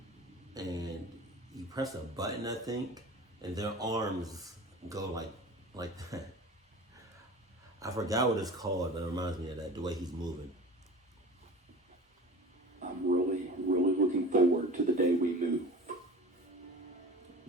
And you press a button, I think, and their arms go like that. I forgot what it's called, but it reminds me of that, the way he's moving. I'm really looking forward to the day we move.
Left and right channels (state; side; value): normal; both; correlation 0.37